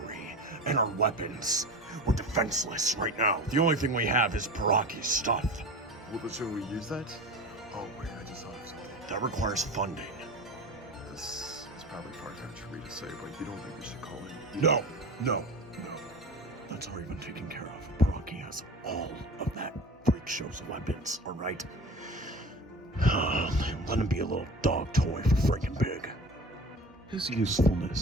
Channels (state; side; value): normal; both; correlation 0.35